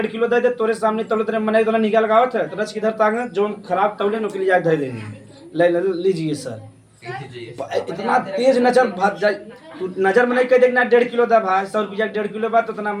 किलो दे दे तोरे सामने तौलत रहे मने निकाल लगावत है तो रच किधर तांग जो खराब तौले नुकली जाए दे देंगे। लीजिए सर, इतना तेज नजर भाग जाए, तू नजर में नहीं कह देखना 1.5 किलो था भाई 100 रुपया 1.5 किलो बात तो इतना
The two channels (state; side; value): identical; both; correlation 1.00